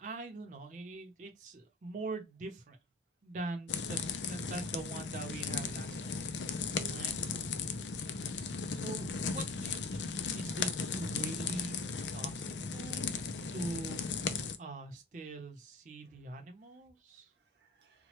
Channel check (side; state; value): right; quieter; 3.3 dB